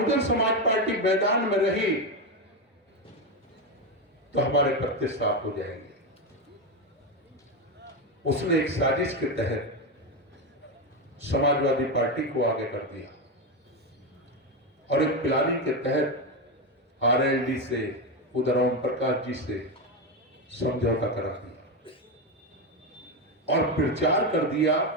समाज पार्टी मैदान में रही तो हमारे पत्ते साफ हो जाएंगे। उसने एक साजिश के तहत समाजवादी पार्टी को आगे कर दिया और एक प्लानिंग के तहत आरएलडी से, उधर ओम प्रकाश जी से समझौता करा दिया और प्रचार कर दिया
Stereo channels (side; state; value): both; normal; correlation 0.12